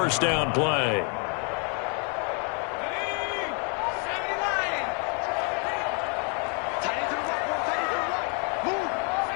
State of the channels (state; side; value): quieter; right; 38.0 dB